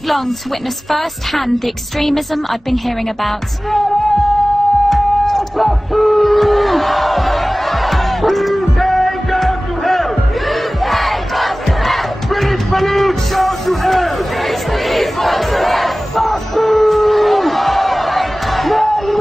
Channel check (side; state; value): both; normal; correlation 0.98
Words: long to witness firsthand the extremism I'd been hearing about.